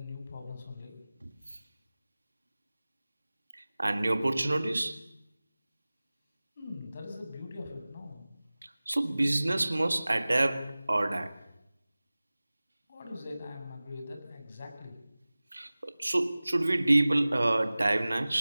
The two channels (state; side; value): inverted; both; correlation -0.98